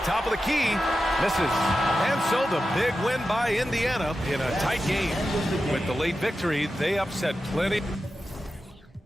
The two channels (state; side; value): normal; both; correlation 0.91